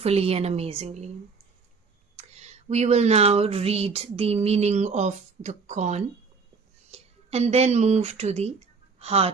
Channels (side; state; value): left; quieter; 4.9 dB